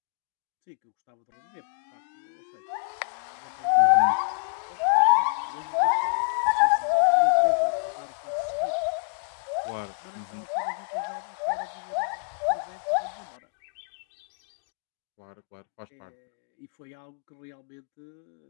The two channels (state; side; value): silent; right; digital silence